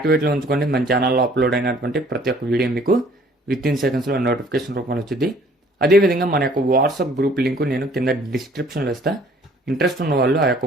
ఉంచుకోండి. మన ఛానల్లో అప్లోడ్ అయినటువంటి ప్రతి ఒక్క వీడియో మీకు విత్ ఇన్ సెకండ్స్లో నోటిఫికేషన్ రూపంలో వచ్చింది. అదేవిధంగా మన యొక్క వాట్సాప్ గ్రూప్ లింక్ నేను కింద డిస్క్రిప్షన్లో ఇస్తా. ఇంట్రెస్ట్ ఉన్న వాళ్ళు ఆ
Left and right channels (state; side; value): normal; both; correlation 0.57